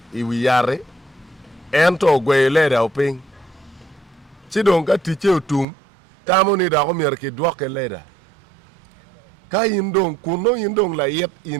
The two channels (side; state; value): left; drops out; at 5.7 s